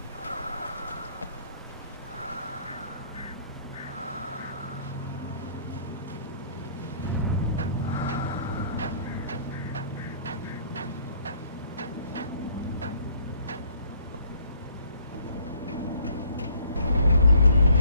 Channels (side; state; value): both; inverted; correlation -0.61